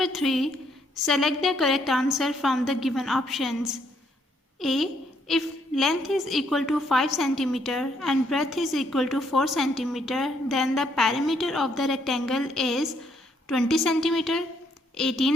3. Select the correct answer from the given options. A. If length is equal to 5 cm and breadth is equal to 4 cm, then the perimeter of the rectangle is 20 cm,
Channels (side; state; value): both; normal; correlation 0.71